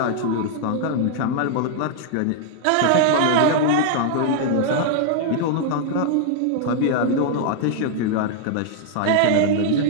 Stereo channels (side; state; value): both; different; correlation -0.01